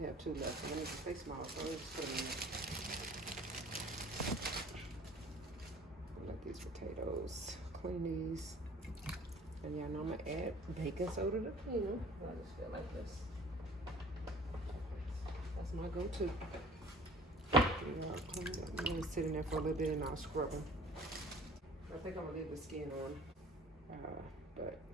have 2 left. I'm gonna stay small, so I'm just put them in there. Let these potatoes, clean these. And y'all know I'm gonna add baking soda to clean them. I just feel like this. That's my go-to. I'm gonna sit in there for a little bit and I'll scrub them. I think I'm gonna leave the skin on, but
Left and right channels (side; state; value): both; normal; correlation 0.49